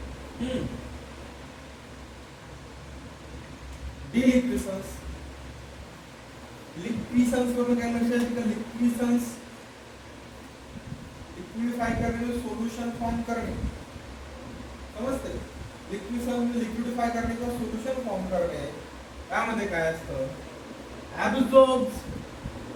डिलिक्विसन्स. लिक्विसन्स वरून काय लक्षात येतं का? लिक्विसन्स लिक्विडिफाय करणे, सोल्युशन फॉर्म करणे. समजते? लिक्विसन्स लिक्विडिफाय करणे किंवा सोल्युशन फॉर्म करणे. यामध्ये काय असतं? ऍब्सॉर्ब्स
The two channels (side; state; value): both; identical; correlation 1.00